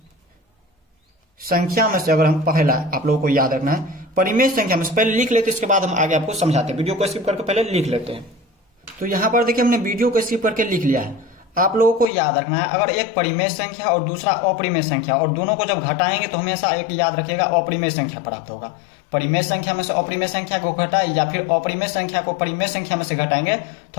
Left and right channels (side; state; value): right; drops out; at 12.1 s